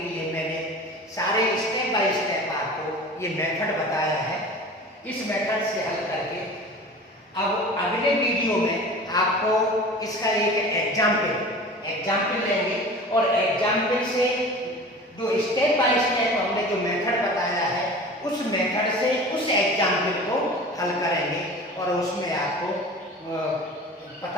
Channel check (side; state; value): both; normal; correlation 0.38